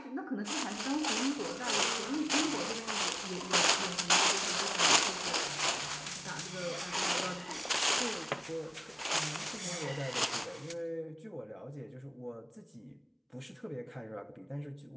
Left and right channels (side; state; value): both; identical; correlation 1.00